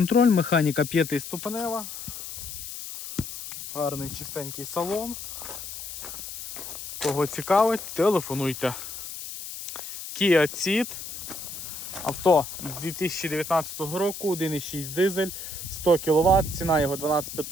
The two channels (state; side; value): noise; left; hiss, 9 dB below the sound